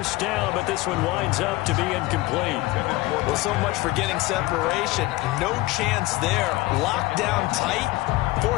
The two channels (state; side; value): quieter; right; 19.6 dB